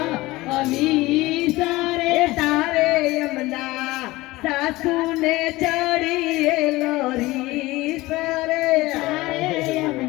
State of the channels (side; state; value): right; quieter; 19.5 dB